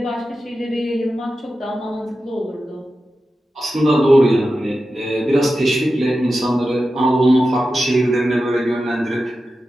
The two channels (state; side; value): normal; both; correlation 0.92